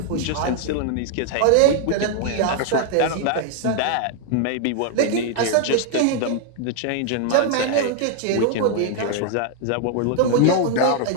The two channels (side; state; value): both; different; correlation 0.00